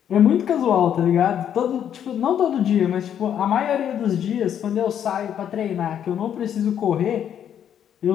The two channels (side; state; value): right; quieter; 9.4 dB